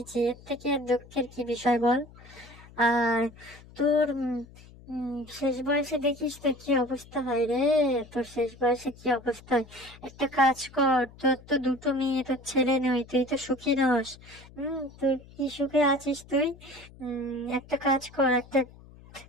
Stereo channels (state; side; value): noise; left; hum, 21 dB below the sound